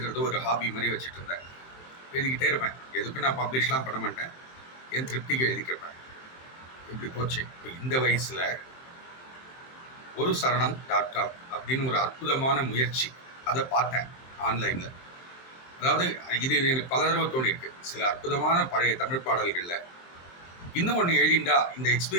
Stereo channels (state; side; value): late; right; 23 ms